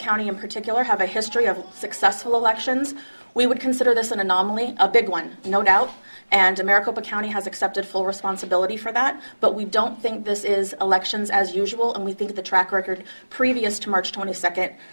in particular have a history of successful elections. We would consider this an anomaly, a big one, no doubt, and Maricopa County has accepted full responsibility for that, but we don't think this is elections as usual, and we think the track record previous to March 22nd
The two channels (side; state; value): both; inverted; correlation -1.00